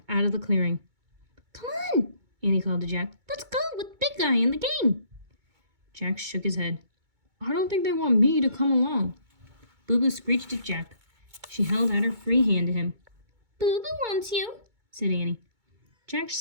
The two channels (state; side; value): late; left; 2.2 ms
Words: out of the clearing. "Come on," Annie called to Jack. "Let's go with Big Guy in the game." Jack shook his head. "I don't think they want me to come along." Boo Boo screeched at Jack. She held out her free hand to him. "Boo Boo wants you," said Annie. Jack